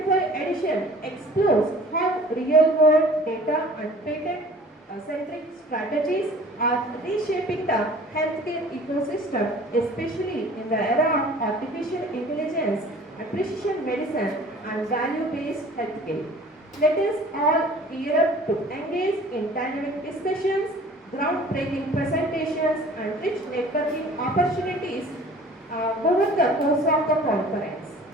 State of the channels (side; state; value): both; normal; correlation 0.48